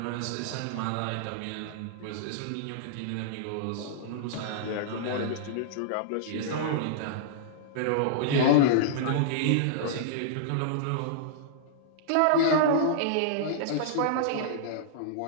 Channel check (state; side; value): different; both; correlation -0.02